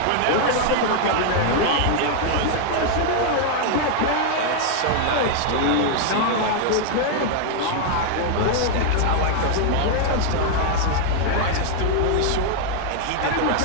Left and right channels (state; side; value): different; both; correlation 0.00